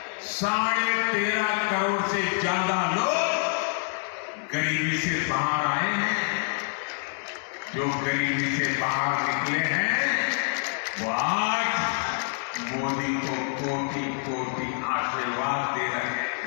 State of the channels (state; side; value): silent; right; 58 dB below the other